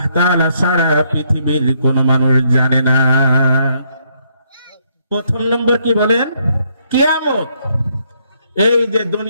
তাআলা ছাড়া পৃথিবীর কোনো মানুষ জানে না। প্রথম নম্বর কি বলেন? কিয়ামত। এই যে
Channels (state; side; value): inverted; both; correlation -0.72